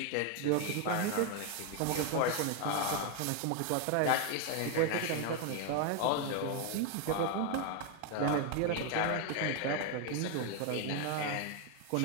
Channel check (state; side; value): different; both; correlation 0.01